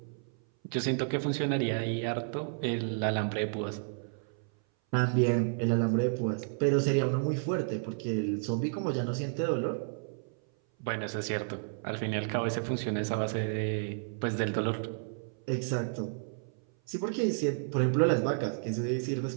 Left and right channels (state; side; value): silent; left; 57 dB below the other